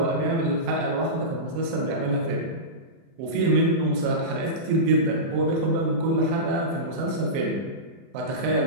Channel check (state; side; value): late; left; 31 ms